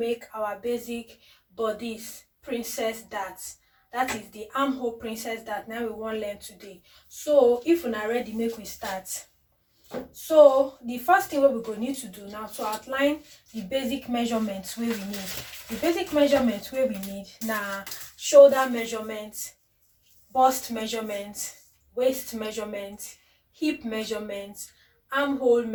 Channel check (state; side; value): identical; both; correlation 1.00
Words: our basic bodice princess darts. That is the armhole princess dart. Now we want to learn today. So if we're not ready, make we start. So the first thing we go need to do now to outline the basic measurements where we need. The basic measurements where we need now shoulder measurements, bust measurement, waist measurement, hip measurement, armhole